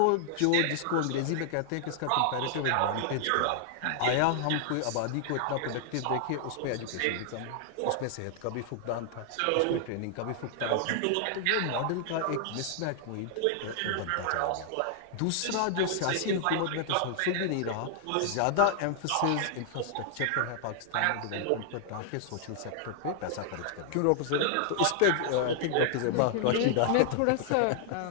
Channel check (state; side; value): different; both; correlation -0.01